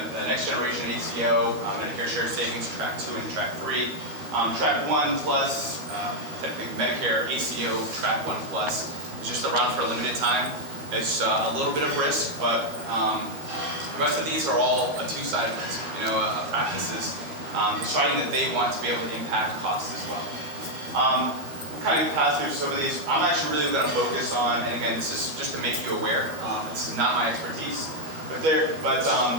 next generation ACO, Medicare Shared Savings, Track 2 and Track 3. Track 1 Plus, technically Medicare ACO, Track 1 Plus, is just a run for a limited time. It's a little bit of risk, but the rest of these are all a two-sided risk. Practices deciding that they want to be able to impact costs as well. We'll kind of pass through some of these. I'm actually really going to focus on, and again, this is just to make you aware. This is not my expertise, but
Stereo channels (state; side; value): late; left; 13 ms